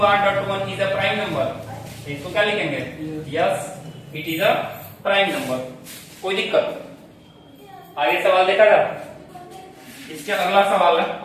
r dot 1 is a prime number. इसको क्या लिखेंगे? Yes, it is a prime number. कोई दिक्कत? आगे सवाल देखा जाए। इसके अगला सवाल है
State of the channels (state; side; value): identical; both; correlation 1.00